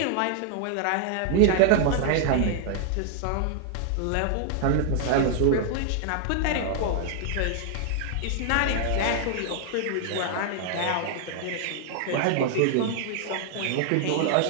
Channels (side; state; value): both; different; correlation 0.00